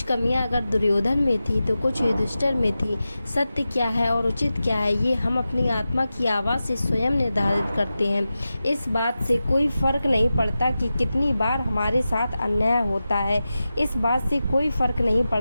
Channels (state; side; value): inverted; both; correlation -0.93